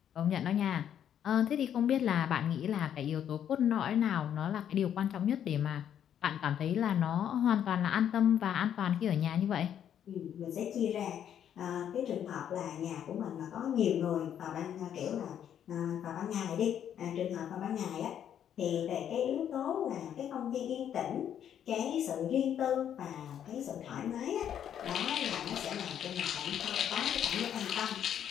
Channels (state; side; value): quieter; right; 9.5 dB